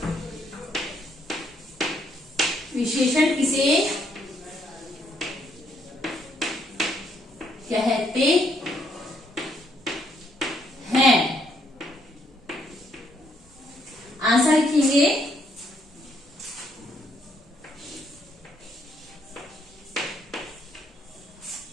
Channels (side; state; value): both; normal; correlation 0.72